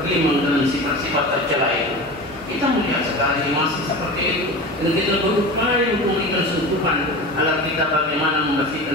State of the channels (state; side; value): normal; both; correlation 0.30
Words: dalam sifat-sifat tercela itu. Kita melihat sekali masih seperti itu, dan kita berupaya untuk memberikan sentuhan agar kita bagaimana